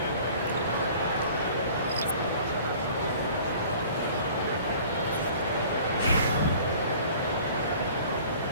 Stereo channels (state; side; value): inverted; both; correlation -0.48